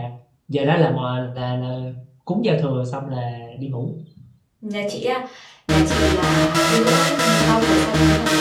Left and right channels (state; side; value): identical; both; correlation 1.00